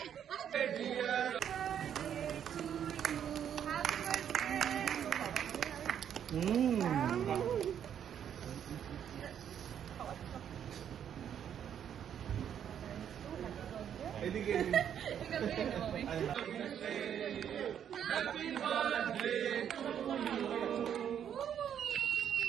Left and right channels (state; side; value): quieter; left; 9.1 dB